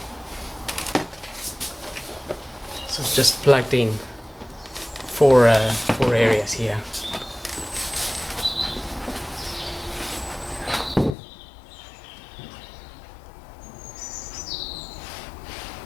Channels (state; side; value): drops out; right; at 11.2 s